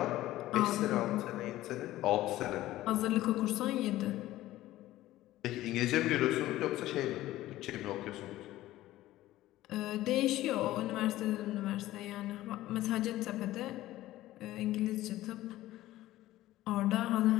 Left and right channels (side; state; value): right; quieter; 15.6 dB